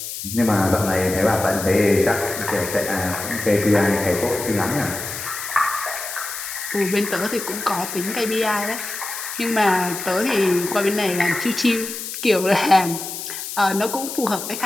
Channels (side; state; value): left; noise; hiss, 7 dB below the sound